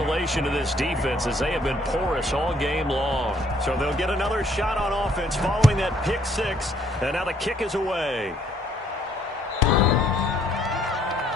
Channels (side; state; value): both; normal; correlation 0.65